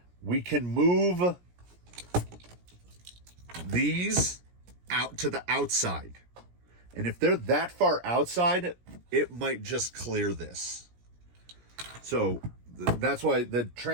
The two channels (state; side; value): late; left; 17 ms